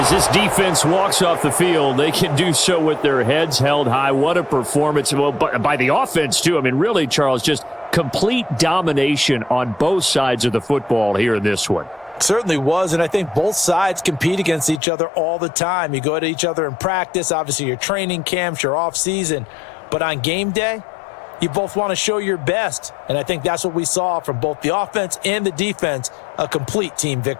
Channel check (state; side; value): drops out; right; at 14.8 s